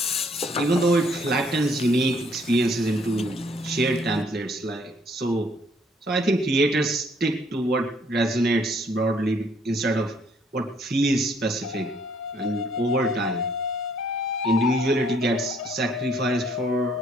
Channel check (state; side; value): normal; both; correlation 0.65